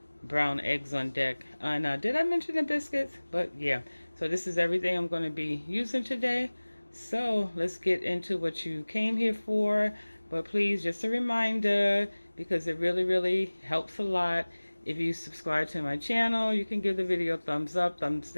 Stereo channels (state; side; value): inverted; both; correlation -1.00